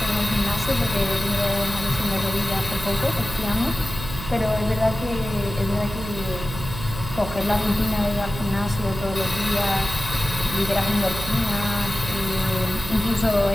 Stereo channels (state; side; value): noise; right; hum, 10 dB below the sound